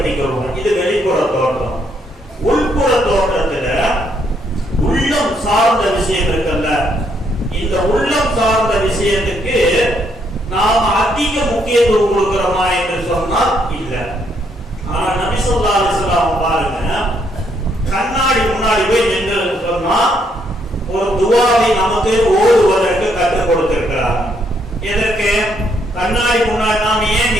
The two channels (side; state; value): both; normal; correlation 0.73